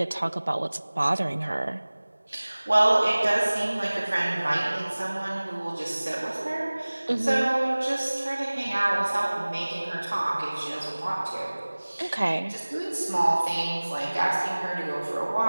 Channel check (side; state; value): both; inverted; correlation -1.00